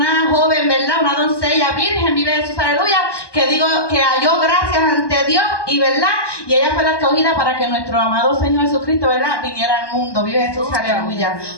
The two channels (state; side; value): late; right; 1.2 ms